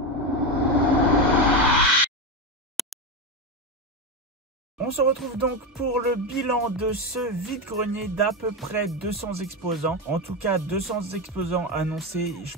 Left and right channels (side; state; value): both; normal; correlation 0.14